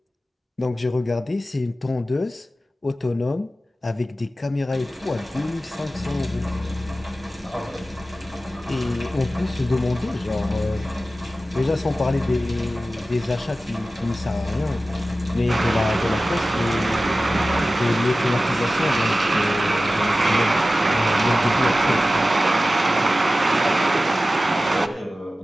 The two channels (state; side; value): normal; both; correlation 0.95